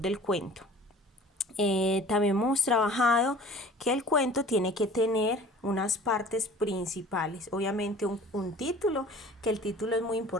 del cuento. También hemos trabajado que el cuento tiene que tener unas partes principales, obviamente un título, que el título es muy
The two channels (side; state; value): both; normal; correlation 0.46